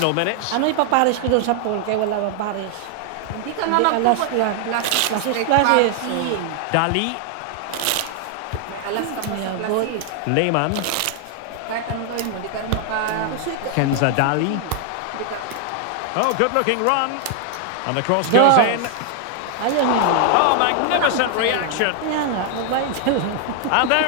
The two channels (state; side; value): different; both; correlation 0.00